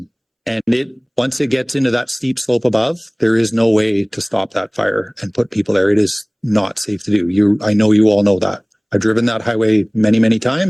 once it gets into that steep slope above, there is no way to stop that fire and put people there. It is not safe to do. I know you all know that. I've driven that highway many, many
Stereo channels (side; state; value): both; identical; correlation 1.00